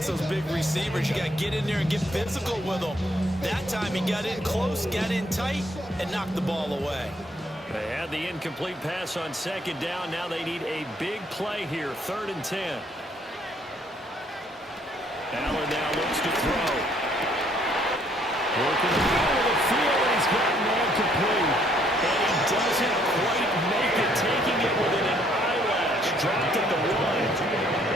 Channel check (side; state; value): both; normal; correlation 0.67